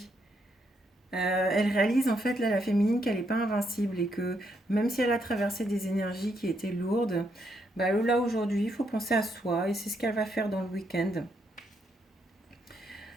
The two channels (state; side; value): normal; both; correlation 0.77